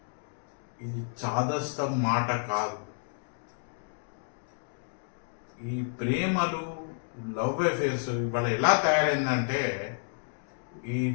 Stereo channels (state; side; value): silent; right; digital silence